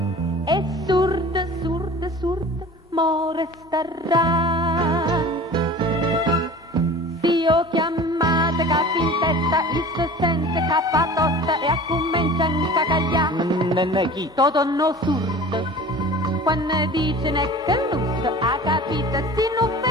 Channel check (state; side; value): normal; both; correlation 0.41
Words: E surda, surda, surda, mo resterà. Si io chiamate capi in testa, il se sente capa tosta e a comincia a cagliare. Toto no surdo, quando dice ne che lusso, ha capito si non